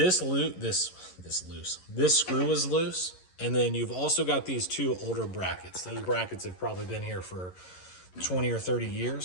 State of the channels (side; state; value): right; late; 11 ms